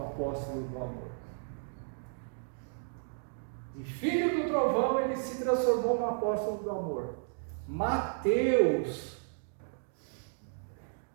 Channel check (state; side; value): silent; left; digital silence